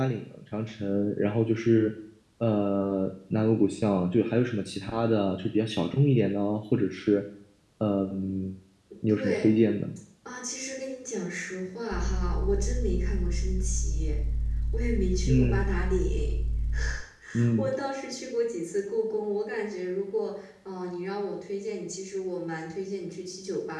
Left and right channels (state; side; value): identical; both; correlation 1.00